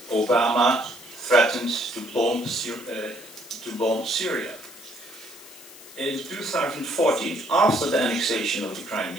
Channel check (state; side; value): noise; left; hiss, 19 dB below the sound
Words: Obama threatened to bomb Syria. In 2014, after the annexation of the